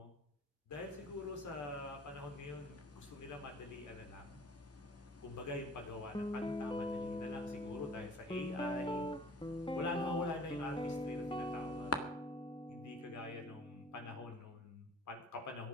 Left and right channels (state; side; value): normal; both; correlation 0.49